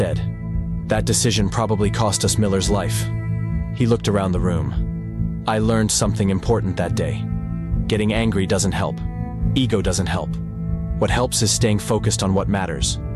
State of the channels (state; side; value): identical; both; correlation 1.00